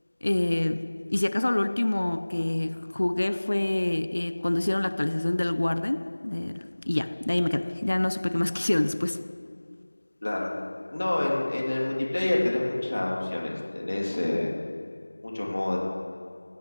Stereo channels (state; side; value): inverted; both; correlation -1.00